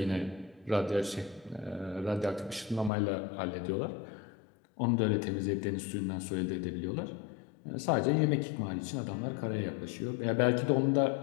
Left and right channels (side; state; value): right; drops out; at 2.9 s